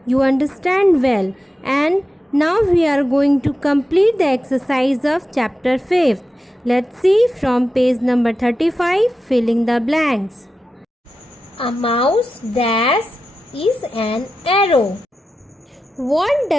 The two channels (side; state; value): both; normal; correlation 0.91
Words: you understand well, and now we are going to complete the exercise of chapter 5th. Let's see from page number 35, filling the blanks. A mouse dash is an arrow. What